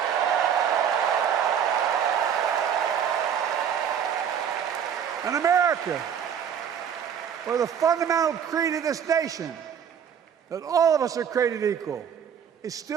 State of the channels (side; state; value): left; quieter; 8.2 dB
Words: An America where the fundamental creed of this nation, that all of us are created equal, is